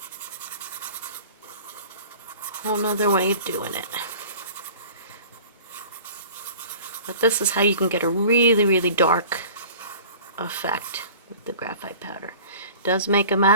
way of doing it. But this is how you can get a really, really dark effect with the graphite powder. It does make a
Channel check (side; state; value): both; inverted; correlation -0.44